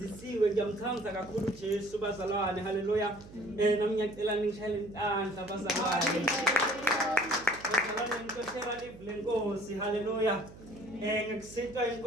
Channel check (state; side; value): noise; right; hum, 18 dB below the sound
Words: ngiyamthanda kakhulu Jesu bazalwane. Hallelujah. Nami ngiyacela ningishayele intandla bazalwane. Bazalwane ngikoshela live lenkosi. Hallelujah. Ngikusinta